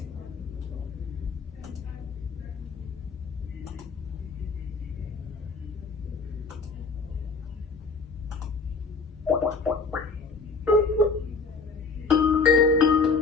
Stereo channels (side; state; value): right; quieter; 4.3 dB